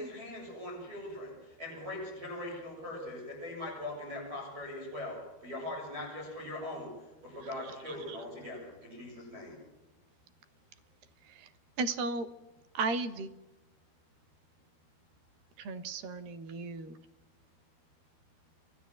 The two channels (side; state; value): left; late; 12 ms